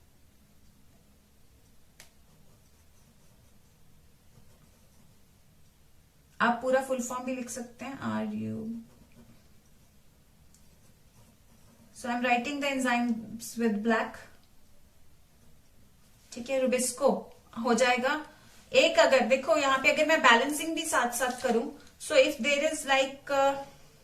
आप पूरा फुल फॉर्म भी लिख सकते हैं, so I am writing the enzymes with black. ठीक है, रुबिस्को हो जाएगा. एक अगर देखो यहाँ पे अगर मैं बैलेंसिंग भी साथ साथ करूं, so if there is like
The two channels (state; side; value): identical; both; correlation 1.00